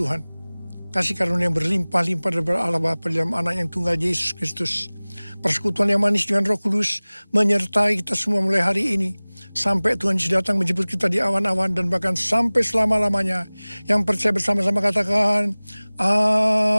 Kasih karunia yang berlimpah-limpah dari Allah Bapa dalam anak yang tunggal Yesus Kristus. Persekutuan yang manis dengan Roh Kudus menyertai kita semua mulai hari ini. Sampai Tuhan Yesus datang menjemput kita di awan-awan dan bahkan sampai selama-lamanya. Yang percaya bersama-sama katakan,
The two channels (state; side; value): inverted; both; correlation -1.00